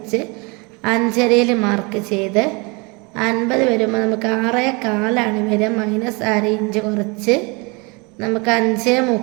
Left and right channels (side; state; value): left; quieter; 28.9 dB